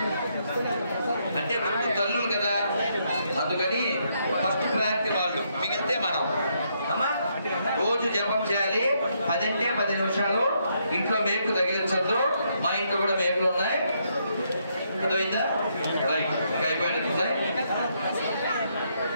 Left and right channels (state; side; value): inverted; both; correlation -0.75